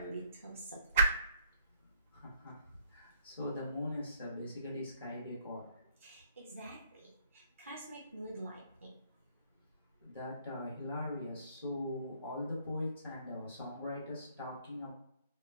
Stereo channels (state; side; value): inverted; both; correlation -0.66